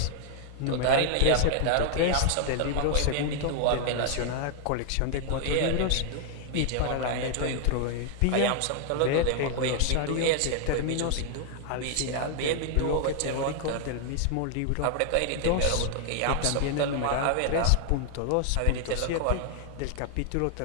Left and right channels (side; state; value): both; different; correlation 0.00